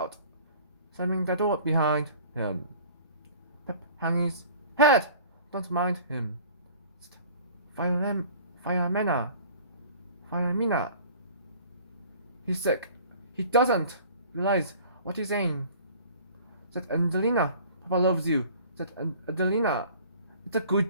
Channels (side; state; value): both; inverted; correlation -0.47